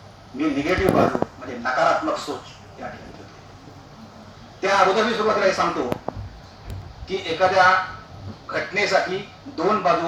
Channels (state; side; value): identical; both; correlation 1.00